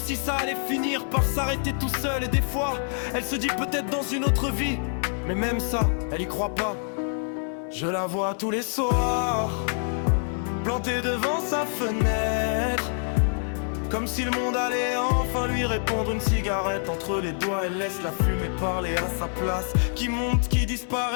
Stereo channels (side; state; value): right; silent; 61 dB below the other